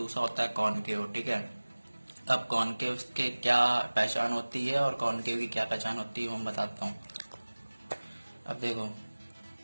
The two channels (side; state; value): both; inverted; correlation -1.00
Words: होता है कॉनकेव। ठीक है, अब कॉनकेव के क्या पहचान होती है और कॉनकेव की क्या पहचान होती है वो मैं बताता हूँ। अब देखो,